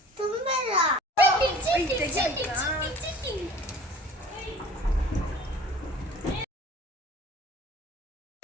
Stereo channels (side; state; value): both; normal; correlation 0.47